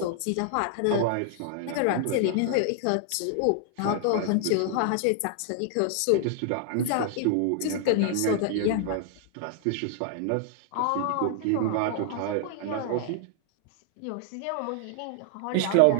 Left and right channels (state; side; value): different; both; correlation 0.00